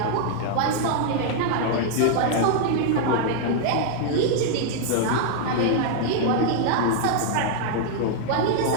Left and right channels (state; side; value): different; both; correlation 0.00